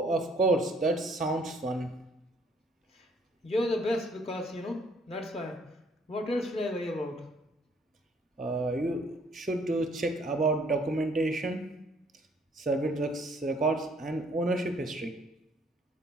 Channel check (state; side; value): normal; both; correlation 0.63